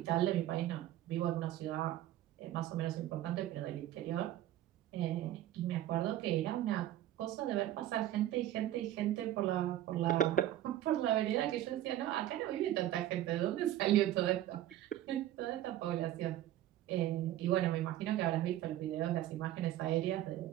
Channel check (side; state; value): left; quieter; 13.4 dB